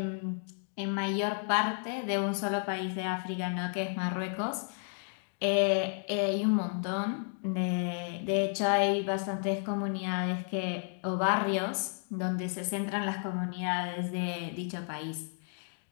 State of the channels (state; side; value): silent; right; 56 dB below the other